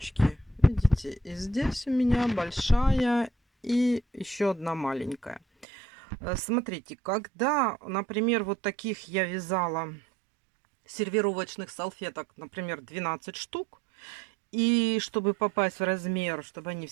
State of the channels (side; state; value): left; drops out; at 5.7 s